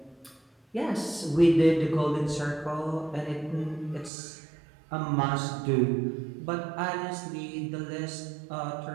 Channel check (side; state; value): left; drops out; at 4.1 s